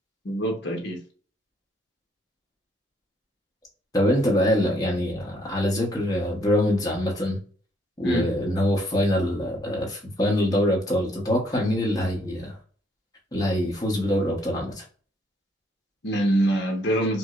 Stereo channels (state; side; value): normal; both; correlation 0.68